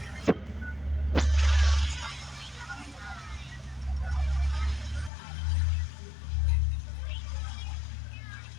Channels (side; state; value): right; drops out; at 5.1 s